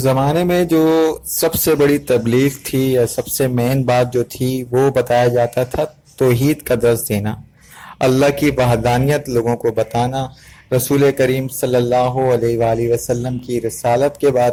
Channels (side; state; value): both; identical; correlation 1.00